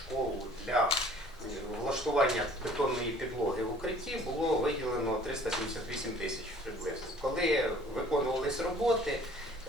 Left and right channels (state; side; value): noise; right; rumble, 21 dB below the sound